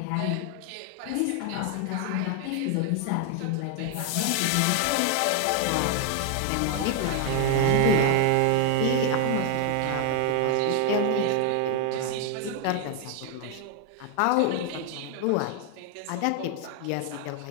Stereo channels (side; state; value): both; different; correlation 0.00